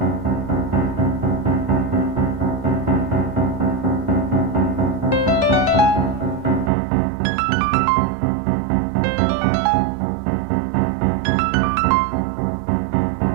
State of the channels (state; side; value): drops out; left; at 6.7 s